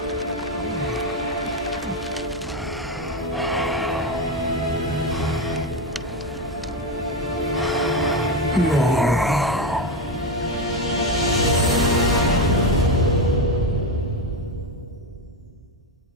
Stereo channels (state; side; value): normal; both; correlation 0.13